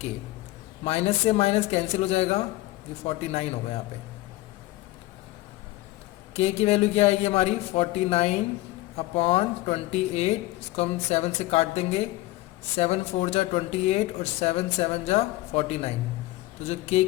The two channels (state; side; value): quieter; right; 18.2 dB